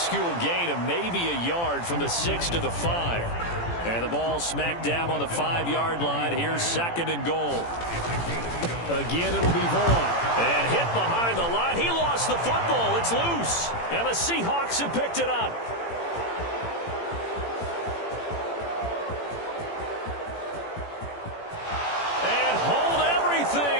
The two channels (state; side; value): late; right; 18 ms